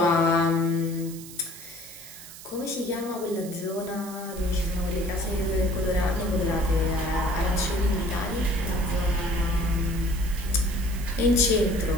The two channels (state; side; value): noise; right; hiss, 15 dB below the sound